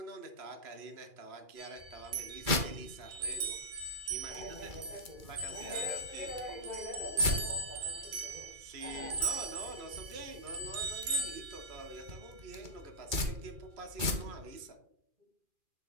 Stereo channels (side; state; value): left; late; 2.3 ms